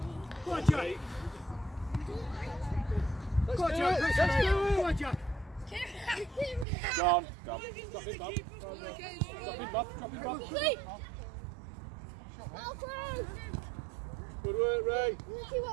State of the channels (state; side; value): drops out; left; at 6.7 s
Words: Go on, Jack. Let's do it. Let's do it. Go on, Jack. Go on. Go on. Drop it, Bob. Drop it, Bob. Drop it, Bob. Good work, Ray.